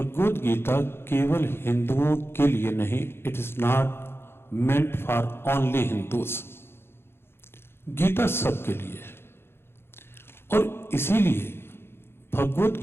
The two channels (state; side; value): late; right; 0.11 ms